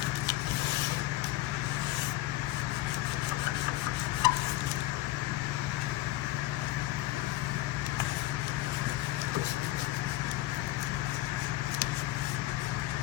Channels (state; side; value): quieter; right; 16.8 dB